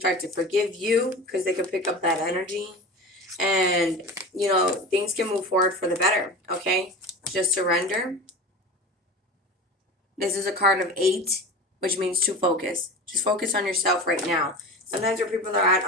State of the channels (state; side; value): normal; both; correlation 0.32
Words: to forgive you because they can pick up that energy. And, things can move forward for the better, okay? Just surrender. This is a card of 8, which means to focus. Just focus on yourself right now. Sometimes where people are at